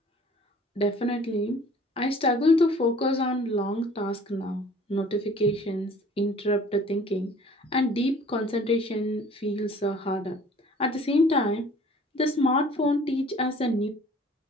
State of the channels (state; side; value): normal; both; correlation 0.51